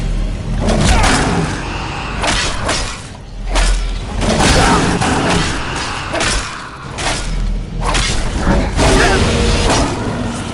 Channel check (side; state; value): both; identical; correlation 1.00